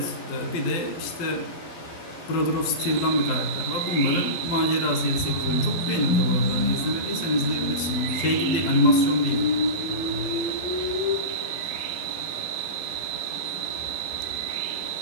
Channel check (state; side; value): late; right; 12 ms